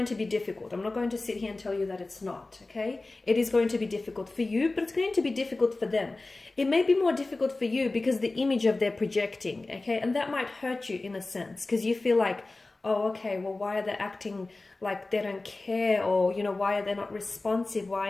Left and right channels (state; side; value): quieter; right; 3.2 dB